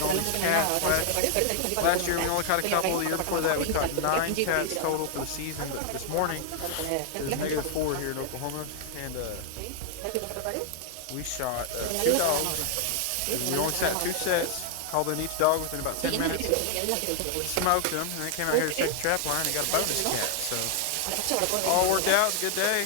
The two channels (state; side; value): different; both; correlation 0.00